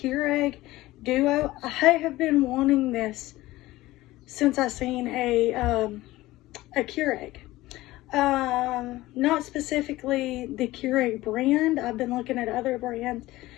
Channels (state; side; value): quieter; right; 17.7 dB